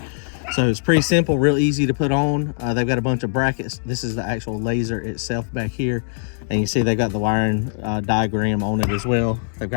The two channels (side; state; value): right; silent; digital silence